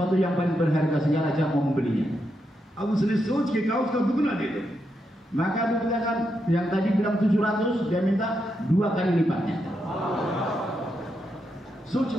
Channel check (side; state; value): both; normal; correlation 0.83